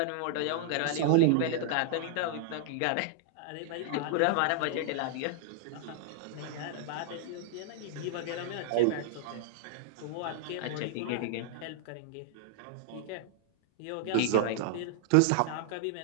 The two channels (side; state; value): both; different; correlation -0.01